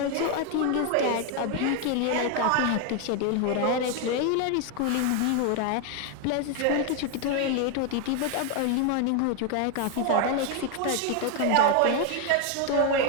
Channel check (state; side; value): different; both; correlation 0.01